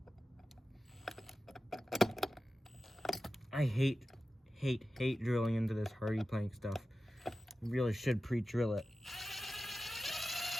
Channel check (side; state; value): both; normal; correlation 0.93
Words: I hate drilling into this hardy plank stuff. You really should pre-drill it.